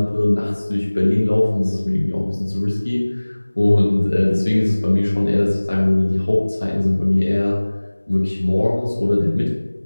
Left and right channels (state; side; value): inverted; both; correlation -1.00